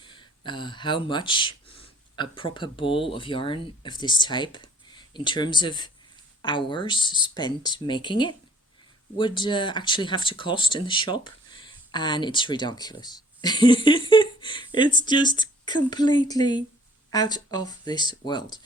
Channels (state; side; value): normal; both; correlation 0.57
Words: how much a proper ball of yarn of this type, in terms of hours spent making it, would actually have to cost in the shop, and it's ridiculous. It's just completely out of this world.